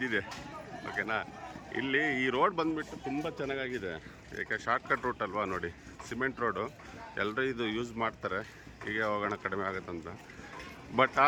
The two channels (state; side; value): identical; both; correlation 1.00